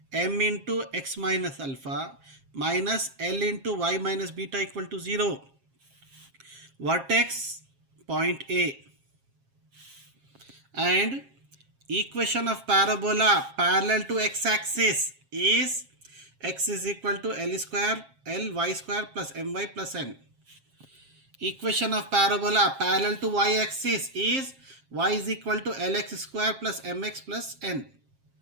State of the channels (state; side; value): late; left; 7.4 ms